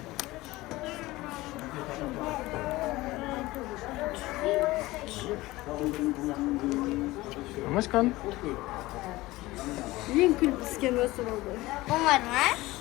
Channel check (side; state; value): right; quieter; 19.1 dB